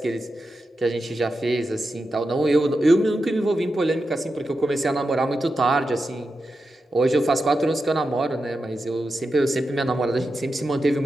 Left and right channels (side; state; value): both; normal; correlation 0.89